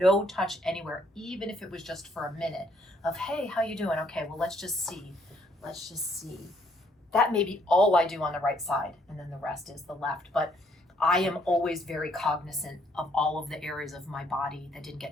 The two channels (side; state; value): both; normal; correlation 0.68